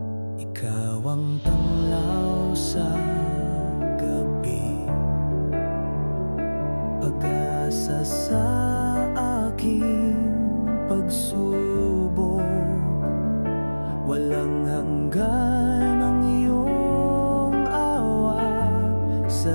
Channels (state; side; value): inverted; both; correlation -1.00